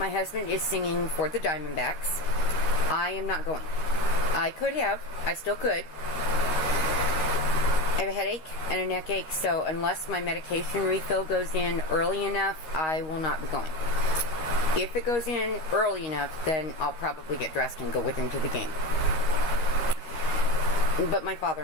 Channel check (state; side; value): late; right; 13 ms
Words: husband is singing for the Diamondbacks. I am not going. I could have. I still could. I have a headache and a neck ache, so unless my medication refill goes in early enough, I will not be going. If it goes in early enough, then I'll probably get dressed and go with him to the game. But my